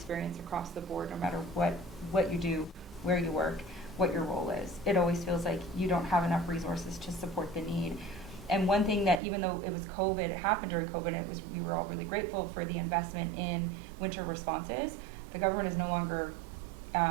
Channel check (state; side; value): drops out; left; at 9.2 s